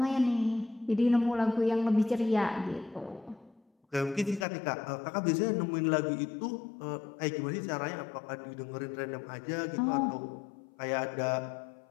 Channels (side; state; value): right; drops out; at 4.5 s